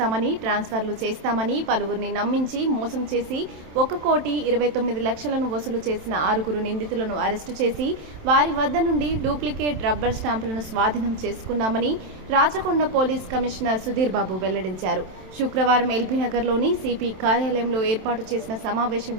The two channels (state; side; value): late; left; 27 ms